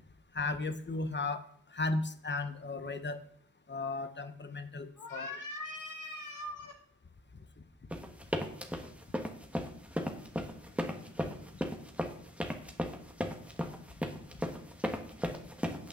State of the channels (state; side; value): normal; both; correlation 0.60